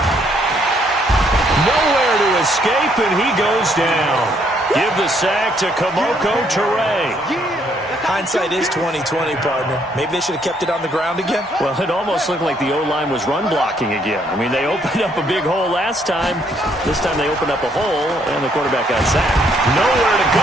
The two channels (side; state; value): both; normal; correlation 0.69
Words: Nowhere to escape, and he goes down. Give the sack to Kamoko Toure. Hindsight is 20/20, partner. Maybe they should have kept it on the ground again. Well, it almost looked like the O-line was run blocking again. I mean, they opened up a big hole last time. This time they opened up a hole, and the quarterback got sacked. Nowhere to